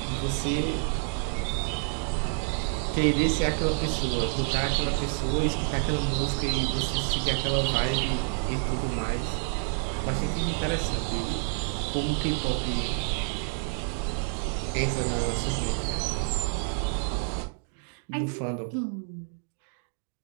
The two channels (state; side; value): silent; left; 58 dB below the other